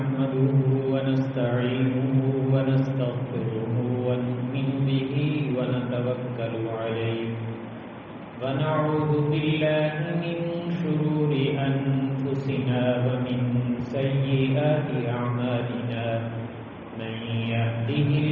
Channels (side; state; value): both; identical; correlation 1.00